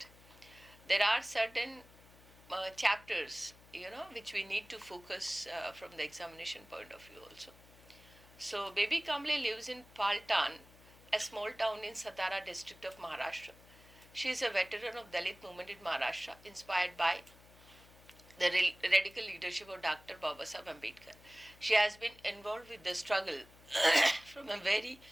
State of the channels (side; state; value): left; noise; hum, 23 dB below the sound